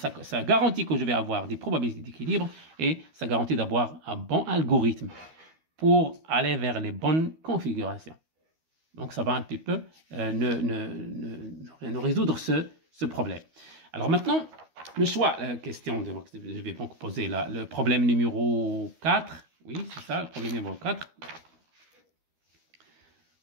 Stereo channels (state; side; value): late; left; 12 ms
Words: garantit que je vais avoir des probabilités d'équilibre et ça garantit d'avoir un bon algorithme pour aller vers les bonnes configurations. Donc ça va un petit peu nous résoudre ce problème. Alors maintenant, le choix, question, je vais donc poser là, le problème numéro 4. Oui, c'est ça, le problème numéro 4.